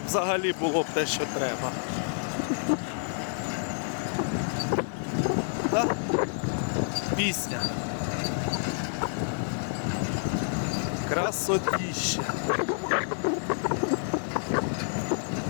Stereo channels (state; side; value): silent; right; digital silence